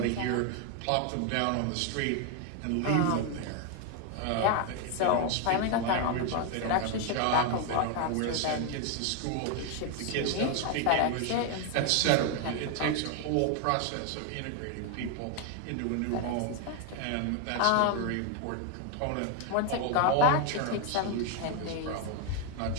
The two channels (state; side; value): different; both; correlation 0.01